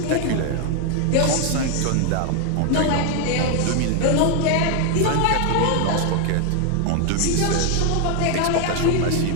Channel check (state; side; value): different; both; correlation 0.01